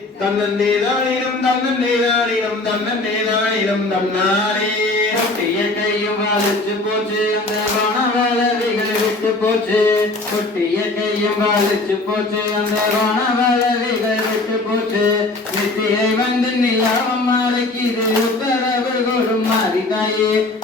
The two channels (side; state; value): right; quieter; 3.0 dB